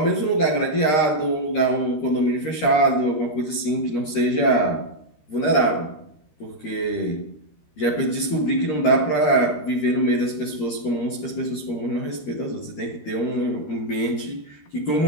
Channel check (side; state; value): right; late; 13 ms